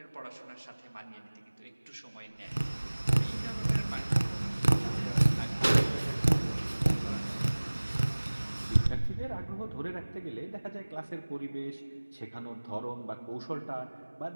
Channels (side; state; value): both; inverted; correlation -1.00